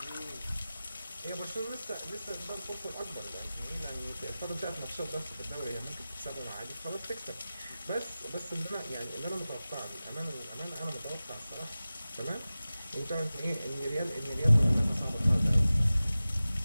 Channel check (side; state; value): both; inverted; correlation -0.96